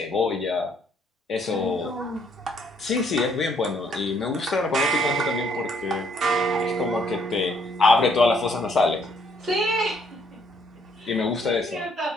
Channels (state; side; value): normal; both; correlation 0.68